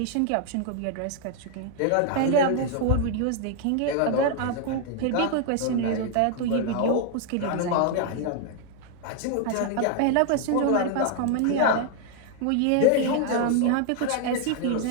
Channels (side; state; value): both; different; correlation 0.00